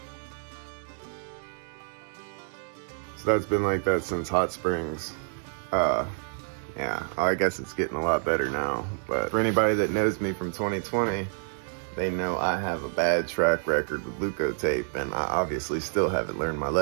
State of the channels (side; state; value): left; silent; 59 dB below the other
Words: So that's been like that since Hot Springs. I guess it's getting a lot better now. But for anybody that knows me from 2020, they know I have a bad track record with Leukotape, and I obviously still haven't learned my